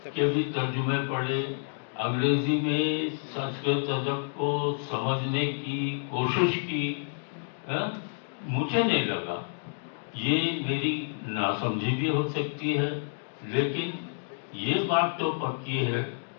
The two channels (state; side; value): silent; right; digital silence